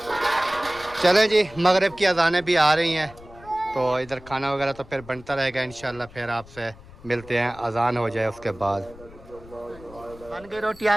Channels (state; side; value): noise; left; rumble, 20 dB below the sound